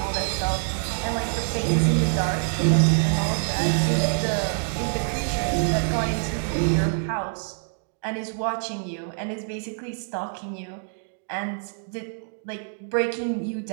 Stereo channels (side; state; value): left; silent; digital silence